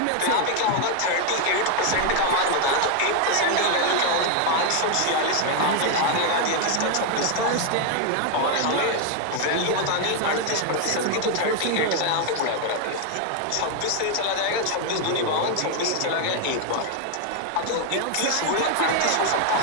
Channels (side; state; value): both; different; correlation 0.00